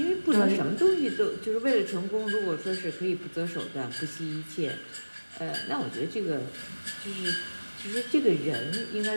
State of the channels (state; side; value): inverted; both; correlation -1.00